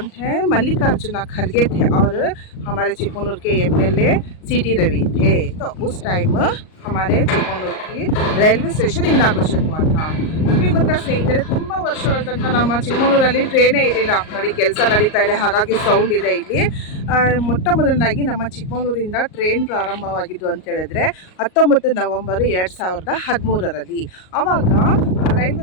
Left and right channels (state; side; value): late; right; 38 ms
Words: थे? मल्लिकार्जुन खड़गे थे। और हमारे चिकमगलूर के एमएलए सीटी रवि थे। तो उस टाइम हमारे चिकमगलूर की ರೈಲ್ವೆ ಸ್ಟೇಷನ್ ಇನಾಗ್ರೇಷನ್ हुआ था। ನಿಮಗೆ ಗೊತ್ತಾ ಸ್ನೇಹಿತರೆ, ತುಂಬ ವರ್ಷಗಳ ತನಕ ನಮ್ಮ ಚಿಕ್ಕಮಗಳೂರಲ್ಲಿ ಟ್ರೈನೇ ಇರಲಿಲ್ಲ. ನೋಡಿ ಕೆಲಸ ನಡೀತಾ ಇದೆ, ಹಾಗಾಗಿ ಸೌಂಡ್ ಇದೆ ಇಲ್ಲಿ. ಮೊಟ್ಟ ಮೊದಲನಾಗಿ ನಮ್ಮ ಚಿಕ್ಕಮಗಳೂರಿಂದ ಟ್ರೈನ್ ಪ್ರಾರಂಭವಾಗಿದ್ದು ಅಂತ ಹೇಳಿದ್ರೆ 19 ನವೆಂಬರ್ 2013ರಲ್ಲಿ. ಆವಾಗ